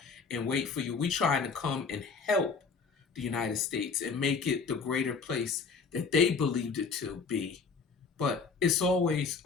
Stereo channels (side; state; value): right; quieter; 5.0 dB